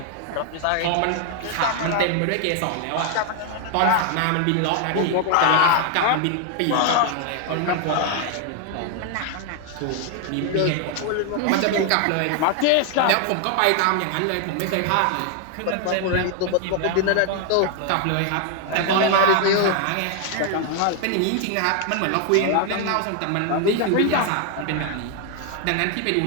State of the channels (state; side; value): different; both; correlation 0.01